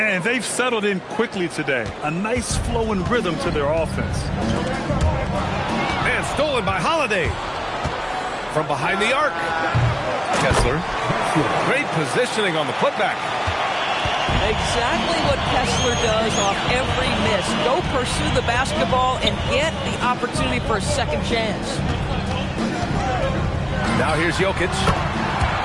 they've settled in quickly today. A nice flow and rhythm to their offense. And stolen by Holiday. From behind the arc. Kessler. Great positioning on the putback. Exactly what Kessler does off every miss. Go pursue the basketball and get the opportunity for a second chance. Now here's Jokic.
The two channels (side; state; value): both; identical; correlation 1.00